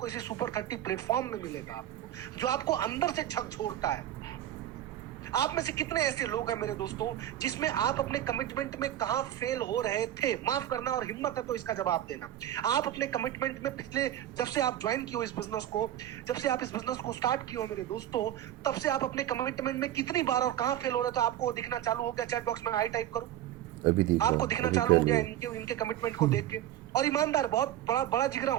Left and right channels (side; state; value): left; quieter; 12.3 dB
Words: इसी सुपर 30 प्लेटफॉर्म में मिलेगा आपको, जो आपको अंदर से झकझोरता है। आप में से कितने ऐसे लोग हैं मेरे दोस्तों, जिसमें आप अपने कमिटमेंट में कहां फेल हो रहे थे? माफ करना, और हिम्मत है तो इसका जवाब देना। आप अपने कमिटमेंट में पिछले, जब से आप ज्वाइन किए हो इस बिजनेस को, जब से आप इस बिजनेस को स्टार्ट किए हो मेरे दोस्तों, तब से आप अपने कमिटमेंट में कितनी बार और कहां फेल हो रहे थे आपको दिखना चालू हो गया? चैट बॉक्स में आई टाइप करो, अभी आपको दिखना चालू हो गया इनके कमिटमेंट को देख के। और ईमानदार, बहुत बड़ा जिगरा